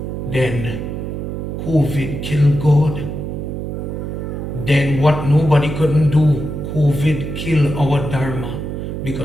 then COVID killed God. Then what nobody couldn't do, COVID killed our Dharma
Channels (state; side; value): noise; right; hum, 5 dB below the sound